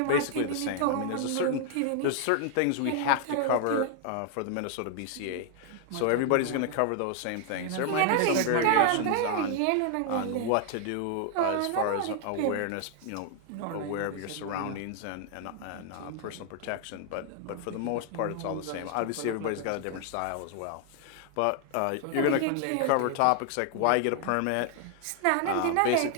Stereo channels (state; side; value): different; both; correlation 0.00